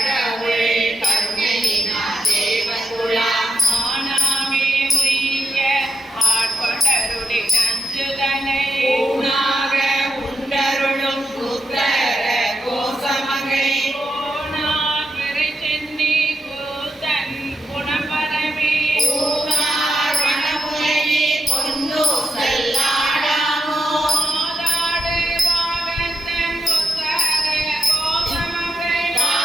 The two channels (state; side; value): normal; both; correlation 0.86